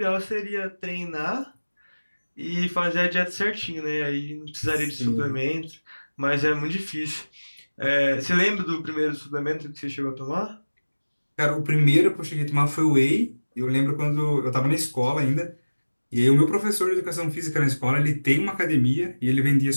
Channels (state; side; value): inverted; both; correlation -1.00